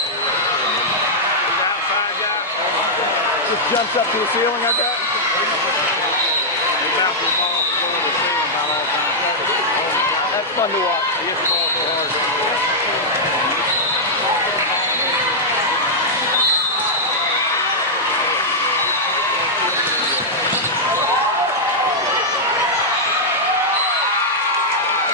Just jumps up to the ceiling, I bet. That's fun to watch.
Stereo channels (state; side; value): normal; both; correlation -0.06